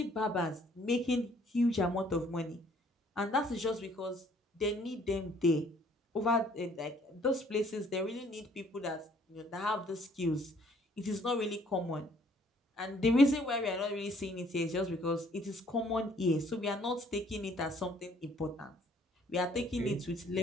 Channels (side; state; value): both; normal; correlation 0.61